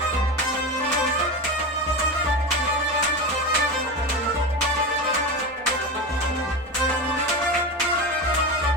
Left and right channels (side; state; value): both; normal; correlation 0.22